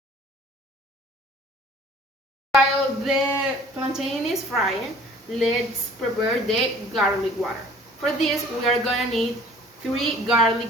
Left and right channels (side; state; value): both; normal; correlation 0.51